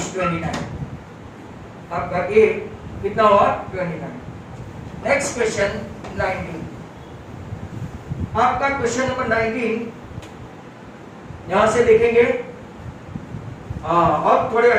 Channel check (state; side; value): identical; both; correlation 1.00